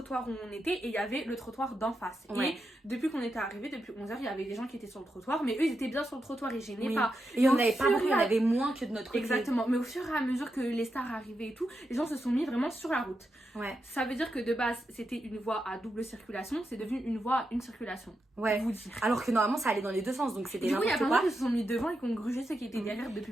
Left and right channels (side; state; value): both; normal; correlation 0.86